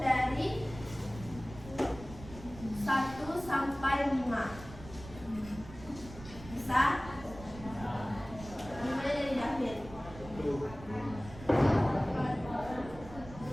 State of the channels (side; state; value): right; noise; rumble, 15 dB below the sound